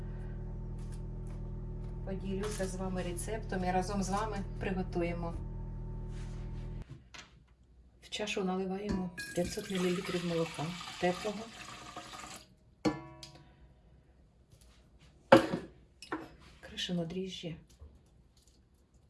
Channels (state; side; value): identical; both; correlation 1.00